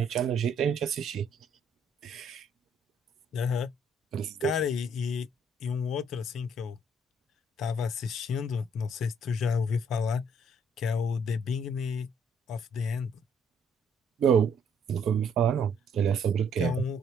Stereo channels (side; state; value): both; normal; correlation 0.66